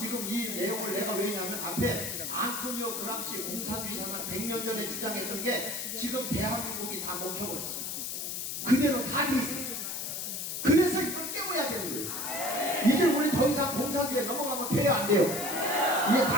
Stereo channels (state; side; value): noise; left; hiss, 4 dB below the sound